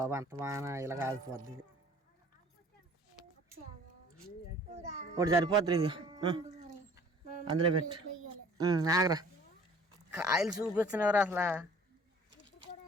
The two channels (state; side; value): normal; both; correlation 0.51